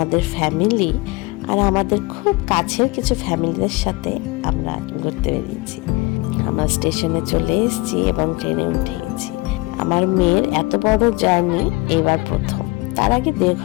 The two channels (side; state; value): right; quieter; 23.8 dB